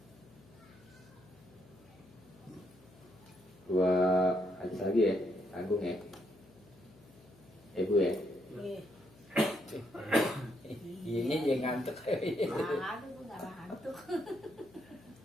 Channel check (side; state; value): left; noise; hum, 25 dB below the sound